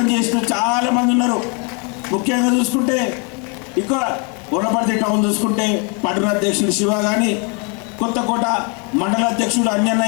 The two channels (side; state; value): right; quieter; 35.0 dB